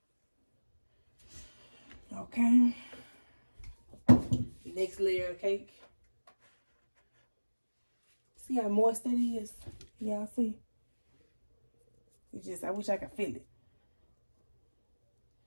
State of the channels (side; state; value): both; inverted; correlation -1.00